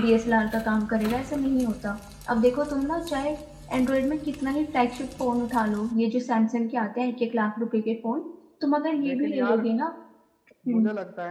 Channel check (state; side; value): identical; both; correlation 1.00